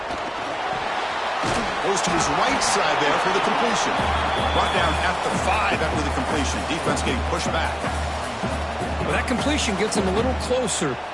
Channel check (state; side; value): identical; both; correlation 1.00